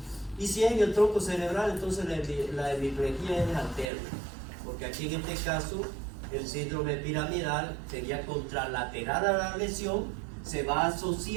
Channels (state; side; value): drops out; left; at 3.9 s